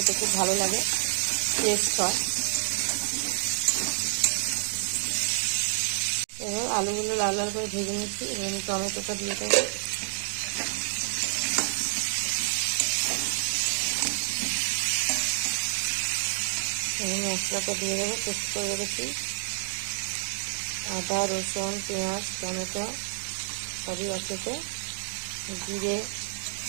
খুব ভালো লাগে, টেস্ট হয়। এবার আলুগুলো লাল লাল করে ভেজে নিচ্ছি। এবার আমি টমেটোটা দিয়ে দেবো। মশলাটা দিয়ে দেবো, পেস্ট করে রেখেছি। আদা, রসুন, পেঁয়াজ, টমেটো সবই আছে। জিরে,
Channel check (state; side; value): silent; left; digital silence